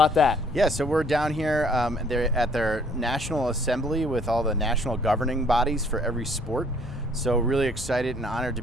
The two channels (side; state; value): both; normal; correlation 0.60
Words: that. Yeah, so we're down here they're at their National Assembly with all the national governing bodies for every sport. So really excited and honored to